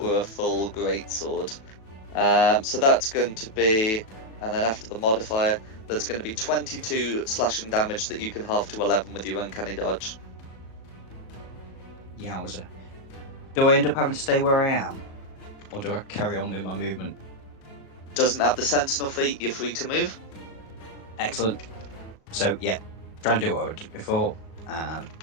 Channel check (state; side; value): late; right; 37 ms